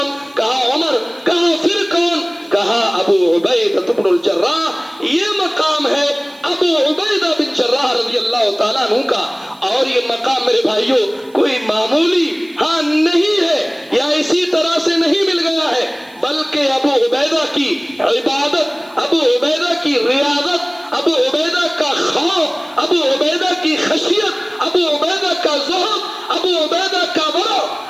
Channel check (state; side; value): noise; right; hiss, 29 dB below the sound